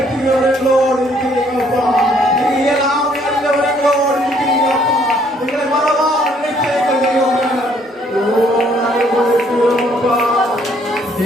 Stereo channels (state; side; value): normal; both; correlation 0.65